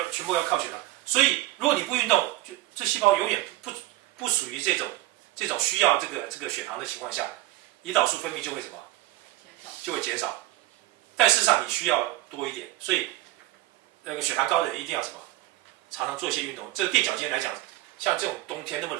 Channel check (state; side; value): quieter; left; 17.4 dB